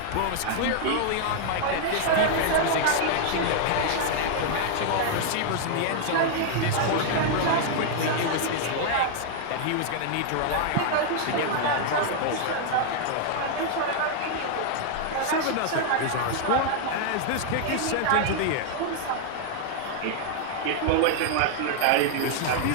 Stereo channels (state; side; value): different; both; correlation 0.00